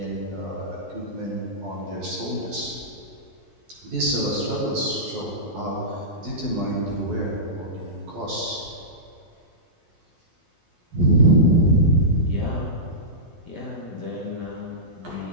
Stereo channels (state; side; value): late; left; 12 ms